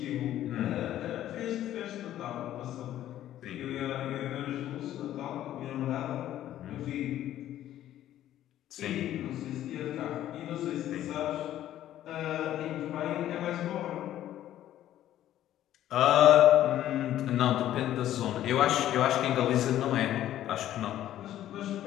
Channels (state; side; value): quieter; right; 12.5 dB